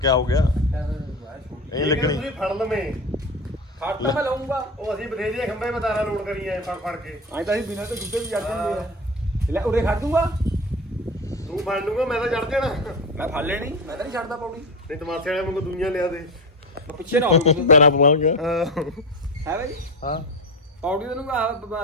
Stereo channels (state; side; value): normal; both; correlation 0.23